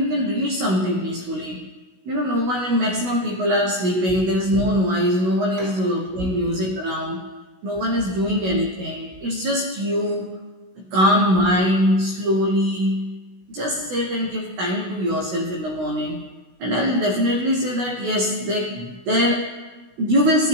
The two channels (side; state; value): left; late; 16 ms